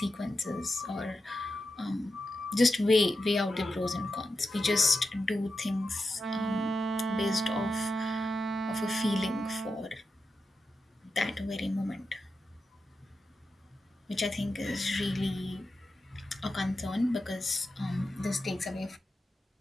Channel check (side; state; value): both; normal; correlation 0.89